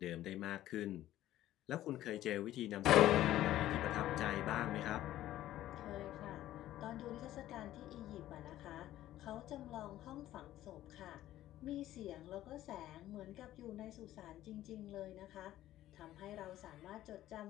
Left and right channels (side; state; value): right; quieter; 13.9 dB